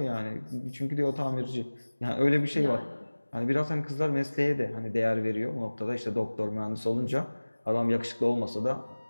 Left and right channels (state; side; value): inverted; both; correlation -1.00